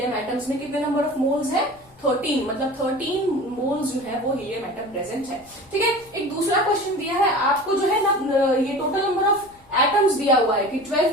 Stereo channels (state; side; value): noise; left; rumble, 29 dB below the sound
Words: एटम्स में कितने नंबर ऑफ मोल्स है, 13, मतलब 13 मोल्स जो है वो हीलियम एटम प्रेजेंट है, ठीक है। एक दूसरा क्वेश्चन दिया है ये टोटल नंबर ऑफ एटम्स दिया हुआ है कि